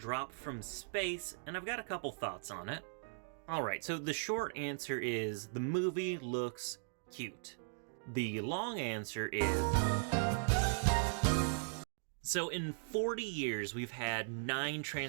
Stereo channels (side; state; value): left; silent; digital silence